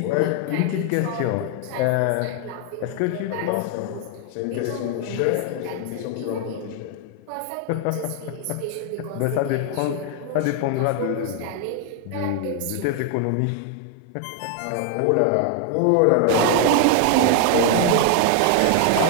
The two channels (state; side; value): different; both; correlation 0.00